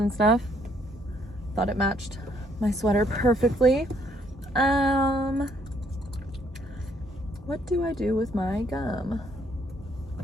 stuff. Thought it matched my sweater perfectly. What do I do with my gum?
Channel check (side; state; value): both; normal; correlation 0.68